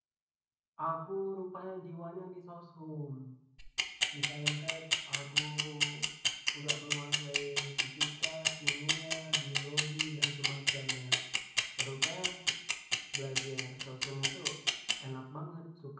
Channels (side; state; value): both; identical; correlation 1.00